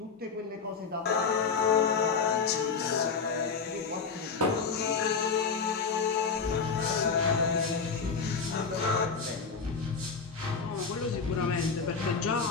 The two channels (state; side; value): quieter; right; 5.3 dB